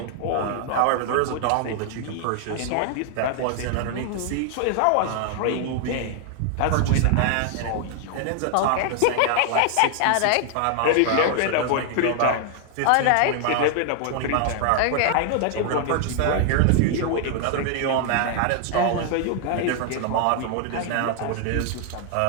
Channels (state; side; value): different; both; correlation 0.00